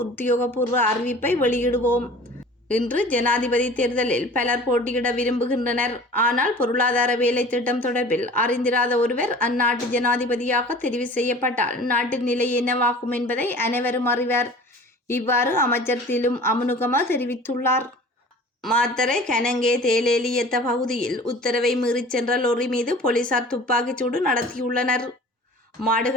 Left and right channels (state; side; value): normal; both; correlation 0.44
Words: அறிவிப்பை வெளியிடுவோம். இன்று ஜனாதிபதி தேர்தலில் பலர் போட்டியிட விரும்புகின்றனர். ஆனால் பொருளாதார வேலை திட்டம் தொடர்பில் அறிந்திராத ஒருவர் அந்நாட்டு ஜனாதிபதியாக தெரிவு செய்யப்பட்டால் நாட்டின் நிலை என்னவாகும் என்பதை அனைவரும் அறிவர். இவ்வாறு அமைச்சர் திலும் அமுனுகம தெரிவித்துள்ளார். மாத்தறை கனங்கே தேலேலியத்த பகுதியில் உத்தரவை மீறிச் சென்ற லொரி மீது போலீசார் துப்பாக்கிச்சூடு நடத்தியுள்ளனர்.